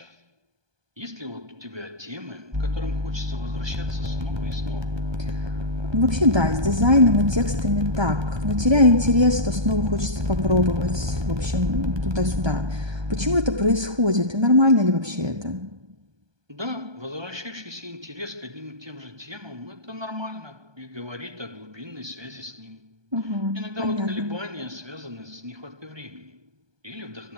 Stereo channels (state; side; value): late; left; 1.2 ms